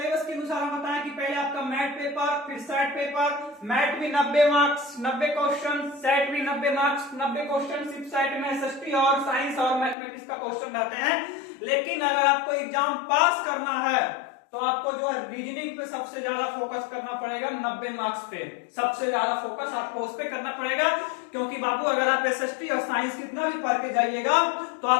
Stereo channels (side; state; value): right; drops out; at 10.0 s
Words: के अनुसार हम बताएं कि पहले आपका मैथ पेपर, फिर सेट पेपर। मैथ भी 90 मार्क्स 90 क्वेश्चन, सेट भी 90 मार्क्स 90 क्वेश्चन। सिर्फ सेट में एसएसटी और साइंस और मैथमेटिक्स का क्वेश्चन रहते हैं। लेकिन अगर आपको एग्जाम पास करना है तो आपको जो है रीजनिंग पे सबसे ज्यादा फोकस करना पड़ेगा। 90 मार्क्स पे सबसे ज्यादा फोकस आपको उस पे करना पड़ेगा। क्योंकि बाबू अगर आप एसएसटी और साइंस कितना भी पढ़ के जाइएगा तो